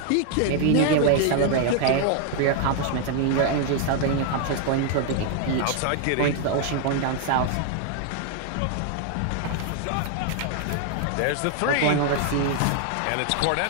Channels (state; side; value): different; both; correlation 0.00